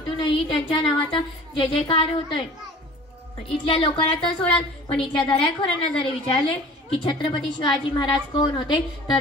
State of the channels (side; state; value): both; normal; correlation 0.44